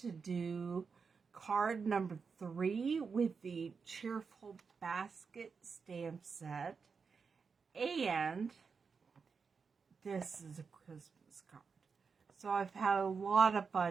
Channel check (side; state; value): left; quieter; 5.4 dB